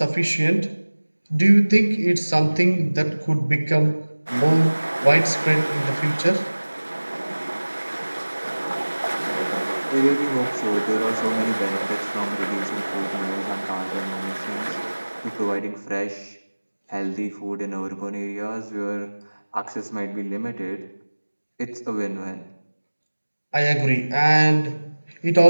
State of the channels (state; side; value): inverted; both; correlation -1.00